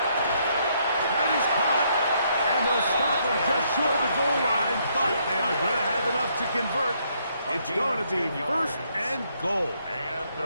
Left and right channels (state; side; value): inverted; both; correlation -0.72